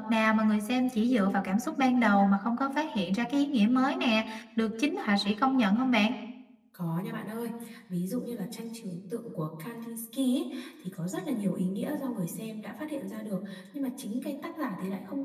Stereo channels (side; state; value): both; identical; correlation 1.00